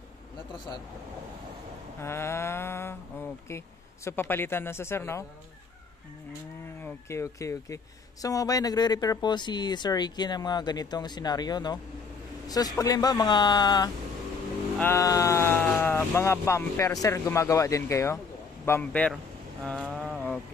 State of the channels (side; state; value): right; quieter; 5.1 dB